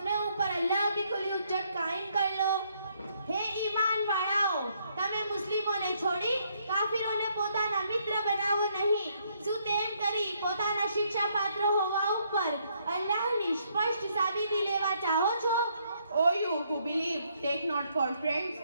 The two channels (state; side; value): inverted; both; correlation -0.71